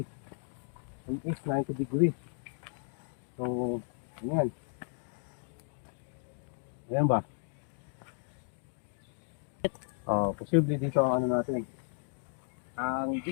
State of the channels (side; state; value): right; silent; digital silence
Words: In east, 90 degree. So, yan. Ayan ba? Posible dito ang ano natin. Ang